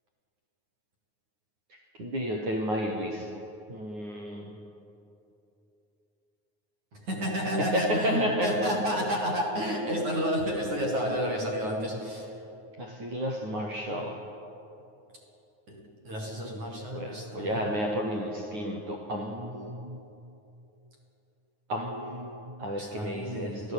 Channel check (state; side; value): late; left; 9.5 ms